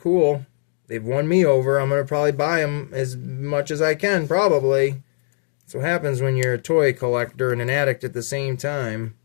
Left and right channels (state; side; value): silent; right; digital silence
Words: They've won me over. I'm going to probably buy them as much as I can, probably. That's what happens when you're a toy collector and an addict at the same time.